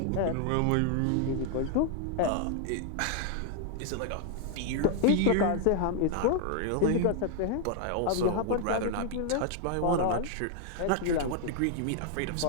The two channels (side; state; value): both; different; correlation 0.00